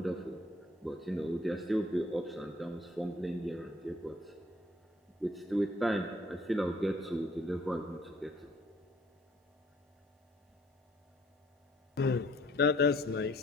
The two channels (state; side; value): normal; both; correlation 0.61